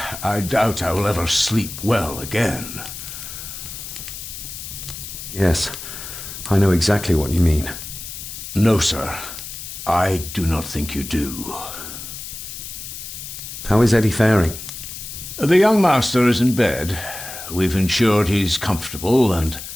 I doubt I will ever sleep well again. Yes, I know exactly what you mean. No, sir. I do not think you do. How is Eddie faring? The young master is in bed. We've ensured he's comfortable and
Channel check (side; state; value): left; noise; hiss, 10 dB below the sound